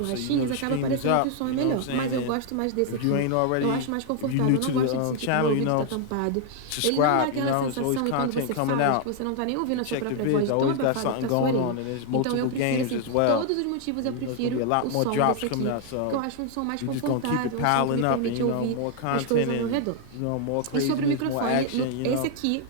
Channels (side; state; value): both; different; correlation 0.00